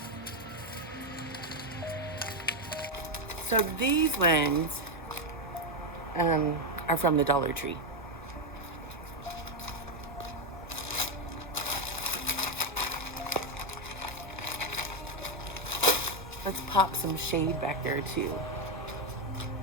So these ones are from the Dollar Tree. Let's pop some shade back there too.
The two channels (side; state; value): both; normal; correlation 0.05